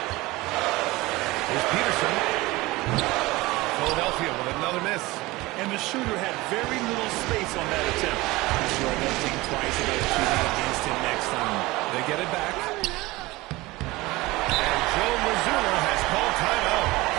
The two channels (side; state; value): left; quieter; 20.7 dB